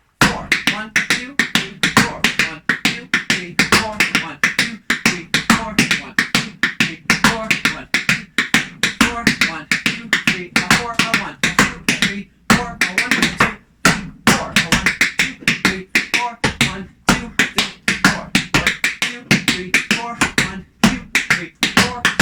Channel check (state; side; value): identical; both; correlation 1.00